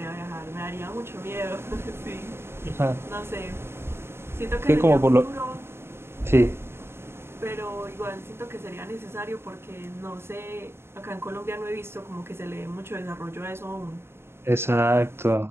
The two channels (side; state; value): left; late; 0.12 ms